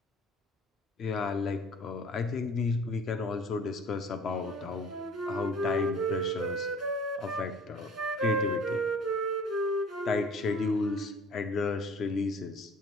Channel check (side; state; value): both; normal; correlation 0.48